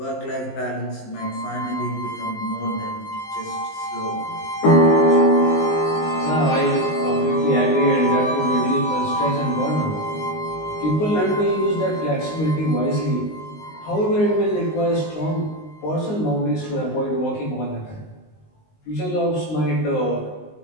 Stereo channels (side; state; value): right; late; 19 ms